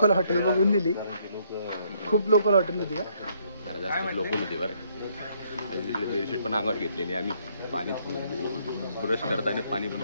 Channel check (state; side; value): inverted; both; correlation -0.69